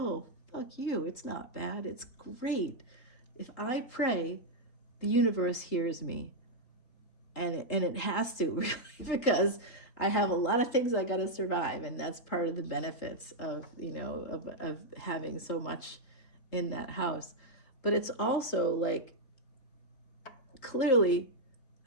fuck you. It's not bad. It's great. If I pray, the universe hears me. And it has to, really, because I have a lot of things I got to survive, and that's part of the benefits of, of having so much in that house. But it's also like, clearly,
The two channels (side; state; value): right; late; 3.8 ms